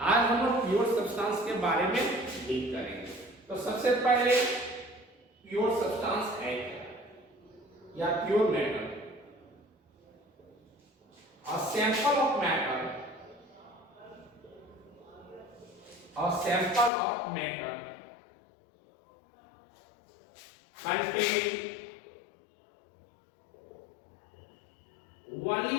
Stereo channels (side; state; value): right; drops out; at 16.9 s